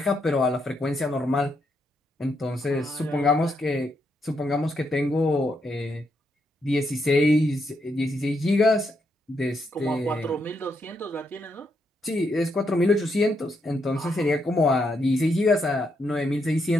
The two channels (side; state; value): both; normal; correlation 0.79